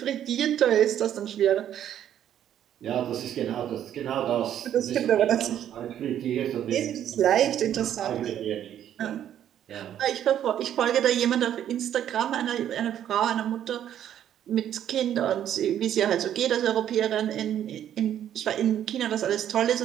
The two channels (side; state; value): left; quieter; 10.5 dB